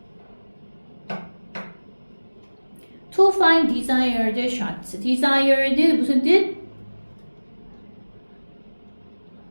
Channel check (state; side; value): inverted; both; correlation -1.00